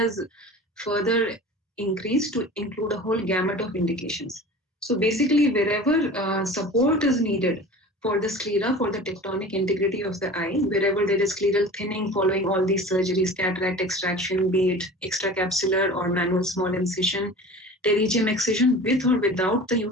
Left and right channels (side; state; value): both; normal; correlation 0.38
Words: further increased to include a whole gamut of indications. So basically, wherever support is needed for the sclera, for the tectonic integrity of the eye, wherever there is scleral thinning following all these surgeries, cataract extraction, be it extracapsular or manual small incision, pterygium excision with or without the